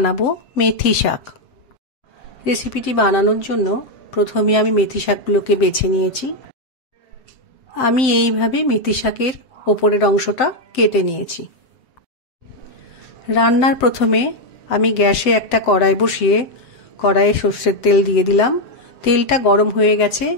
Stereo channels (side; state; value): right; late; 7.7 ms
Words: মেথি শাক। রেসিপিটি বানানোর জন্য প্রথমে আমি মেথি শাকগুলোকে বেছে নিয়েছি। আমি এইভাবে মেথি শাকের ওপরের অংশটা কেটে নিয়েছি। রান্নার প্রথমে আমি গ্যাসে একটা কড়াই বসিয়ে কড়াইয়ে সর্ষের তেল দিয়ে দিলাম। তেলটা গরম হয়ে গেছে।